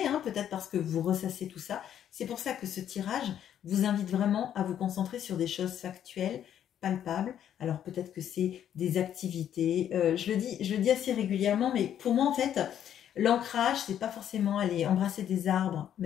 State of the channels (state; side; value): quieter; right; 10.0 dB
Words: hein, peut-être parce que vous ressassez tout ça. C'est pour ça que ce tirage vous invite vraiment à vous concentrer sur des choses factuelles, palpables. Alors peut-être que c'est des activités. Je le dis assez régulièrement, mais pour moi en fait, l'ancrage, c'est pas forcément aller embrasser des arbres,